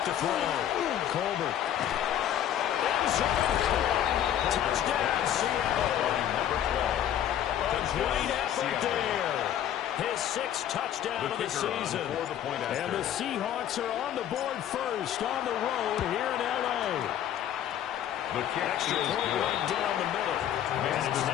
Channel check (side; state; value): right; quieter; 10.8 dB